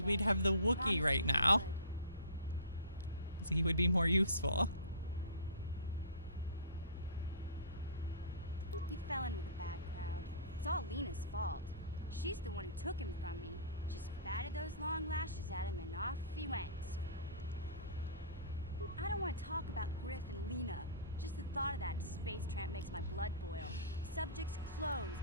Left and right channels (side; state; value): both; inverted; correlation -0.39